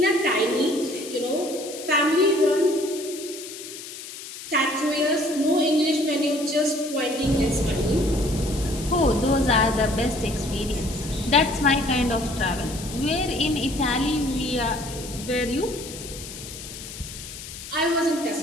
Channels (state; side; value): noise; left; hiss, 12 dB below the sound